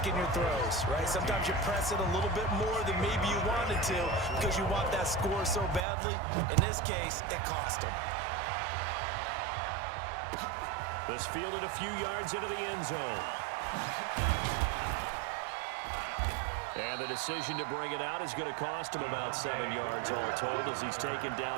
your throws, right? Sometimes you press it a little bit more than maybe you wanted to because you want that score so badly. In this case, it cost them. This fielded a few yards into the end zone. And the decision to bring it out is going to cost him about 7 yards all told as he's taken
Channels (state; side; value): drops out; left; at 5.8 s